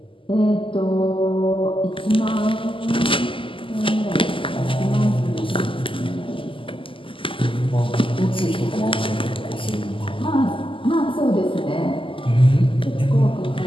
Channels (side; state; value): right; late; 0.25 ms